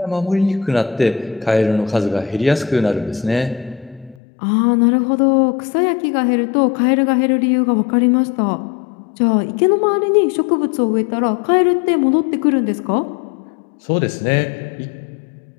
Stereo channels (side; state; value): right; drops out; at 4.2 s